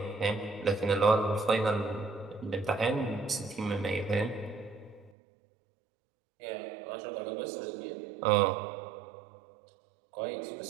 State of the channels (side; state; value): left; drops out; at 5.1 s